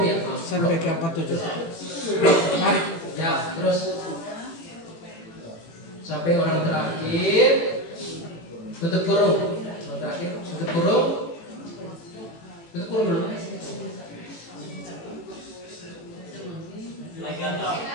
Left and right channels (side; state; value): right; late; 18 ms